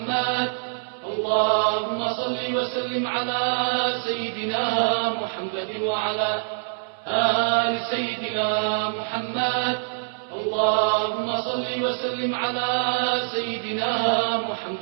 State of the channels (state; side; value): silent; left; 62 dB below the other